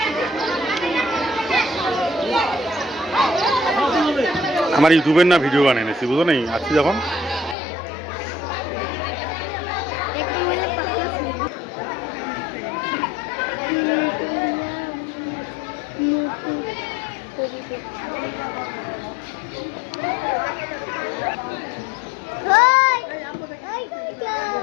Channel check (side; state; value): right; drops out; at 7.6 s